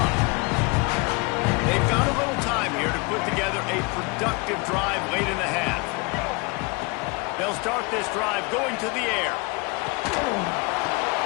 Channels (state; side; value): quieter; right; 28.2 dB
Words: They've got a little time here to put together a productive drive late in the half. They'll start this drive going to the air.